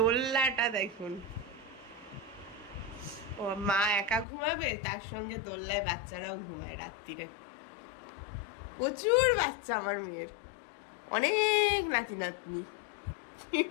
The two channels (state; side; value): drops out; right; at 4.2 s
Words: দেখুন, ও মা একা ঘুমাবে, তার সঙ্গে দোল্লায় বাচ্চারাও ঘুমায় রাত্রিরে। প্রচুর বাচ্চা আমার মেয়ের, অনেক নাতি নাতনি।